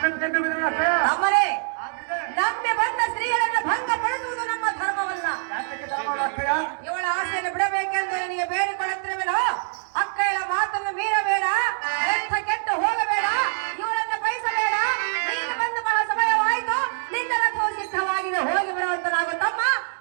ನೆಮ್ಮೆ ಬಂದವನು ಅಕ್ಕಯ್ಯ. ನಮ್ಮನೆ ಆಗ್ಲೇ ನಂಬಿ ಬಂದ ಸ್ತ್ರೀಯರನ್ನು ಭಂಗ ಪಡಿಸುವುದು ನಮ್ಮ ಧರ್ಮವಲ್ಲ. ಯಾತಕ್ಕೆ ಧರ್ಮವಲ್ಲ ಅಕ್ಕಯ್ಯ? ಇವಳ ಆಸೆಯನ್ನು ಬಿಡಬೇಕೆಂದು ನನಗೆ ಬೇಡಿಕೊಳ್ಳುತ್ತಿರುವೆನೋ ಅಕ್ಕಯ್ಯಳ ಮಾತನ್ನು ಮೀರಬೇಡ, ಎಂಥ ಕೆಟ್ಟು ಹೋಗಬೇಡ, ಇವಳನ್ನು ಬಯಸಬೇಡ. ನೀನು ಬಂದು ಬಹಳ ಸಮಯವಾಯಿತು, ನಿನ್ನ ರಥವು ಸಿದ್ಧವಾಗಿದೆ, ಹೋಗಿ ಬರುವಂತನಾಗು ತಮ್ಮ.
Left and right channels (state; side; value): silent; left; digital silence